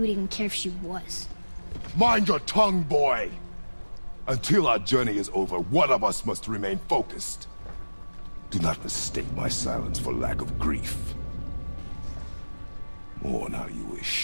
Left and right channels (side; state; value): both; inverted; correlation -1.00